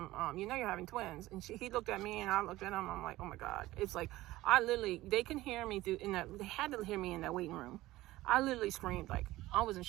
you know you're having twins. And he looked at me, and I looked at him. I'm like, oh my God. It's like, they can hear me they had to hear me in that waiting room. I literally screamed, like, I was in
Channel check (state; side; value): quieter; left; 17.2 dB